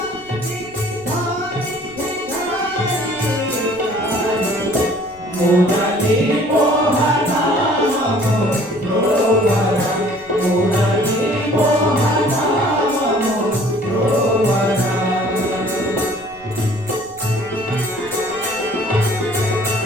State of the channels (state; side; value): noise; right; rumble, 25 dB below the sound